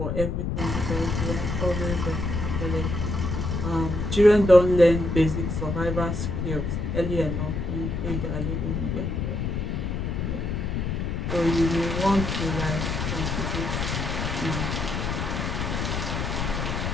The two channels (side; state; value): left; noise; rumble, 2 dB below the sound